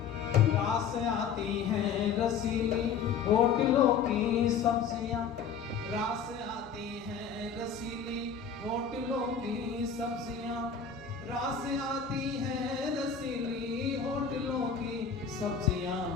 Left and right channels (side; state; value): right; quieter; 6.5 dB